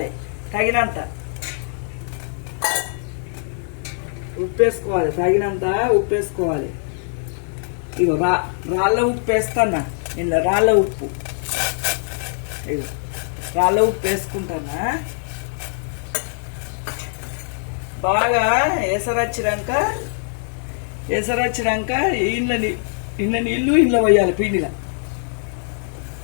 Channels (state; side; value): silent; right; digital silence